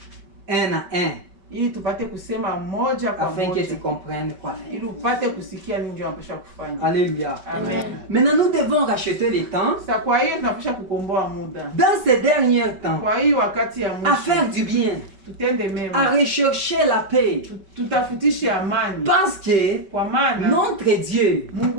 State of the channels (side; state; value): left; late; 5.2 ms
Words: un à un, ili tupate kusema moja kwa afin que tu moja comprennes quoi faire. ili upate kusikia nini ndio unapaswa kufanya. Alléluia. Amen. Maintenant, nous devons racheter le temps Sasa kwa hiyo tunapaswa kukomboa muda. dans ces derniers temps, Kwa hiyo wakati ya à faire mwisho du bien, tutende à mema. rechercher la paix. Tutafutishe amani. Parce que Kwa maana notre Dieu,